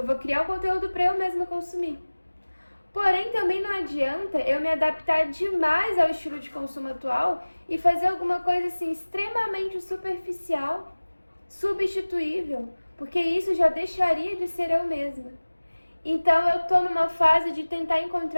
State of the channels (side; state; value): both; inverted; correlation -1.00